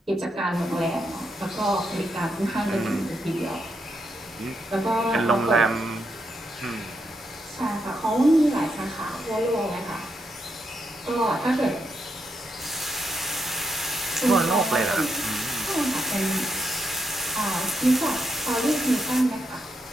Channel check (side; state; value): both; normal; correlation 0.81